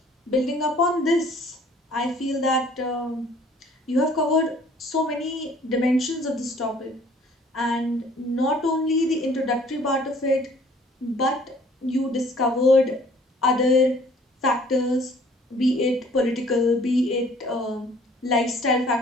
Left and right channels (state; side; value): normal; both; correlation 0.55